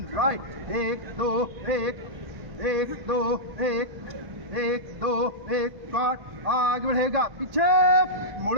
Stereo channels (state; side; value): late; left; 1.5 ms